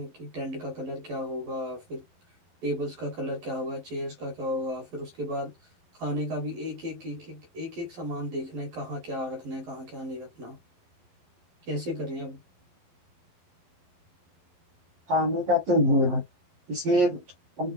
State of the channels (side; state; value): left; late; 11 ms